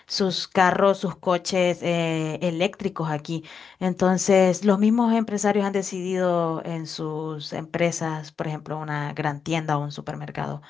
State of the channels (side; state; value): right; quieter; 6.2 dB